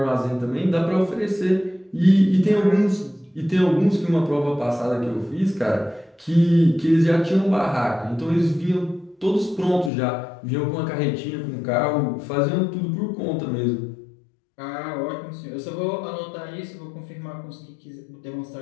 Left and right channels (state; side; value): drops out; right; at 9.9 s